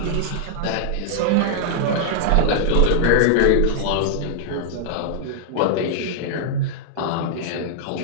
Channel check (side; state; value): both; different; correlation -0.01